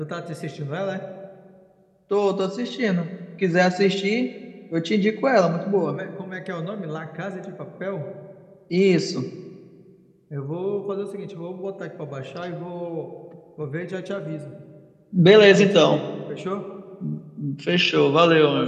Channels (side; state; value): both; identical; correlation 1.00